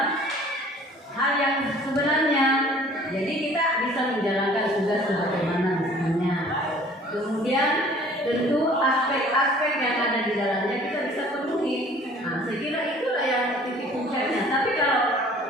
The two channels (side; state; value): both; normal; correlation 0.52